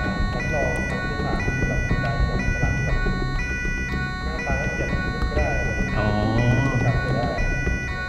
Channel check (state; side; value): identical; both; correlation 1.00